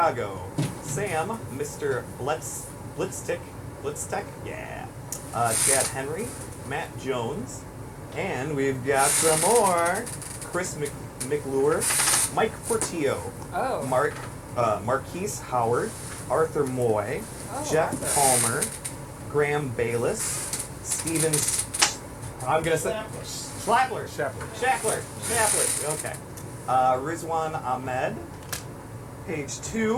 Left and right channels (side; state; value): both; identical; correlation 1.00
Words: Sam, Mr. Blitztech, yeah, Chad Henry, Matt Jones, and we've got some more. Chris McLure, Mike Portillo, Oh. Marquise Howard, Arthur Moy, Oh, Jeff Arthur. Palmer, Graham Bayless, Steven. I'm gonna say Schlappler. Shackler. Okay. Rizwan Ahmed, page